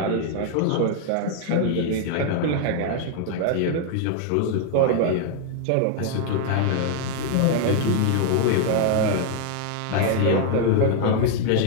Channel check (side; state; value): both; different; correlation 0.00